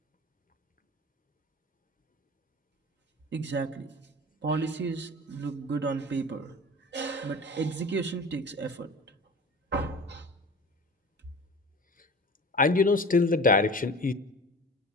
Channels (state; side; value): normal; both; correlation 0.38